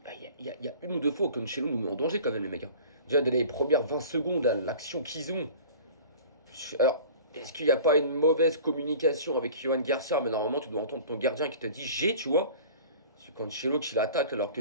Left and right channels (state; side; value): inverted; both; correlation -0.41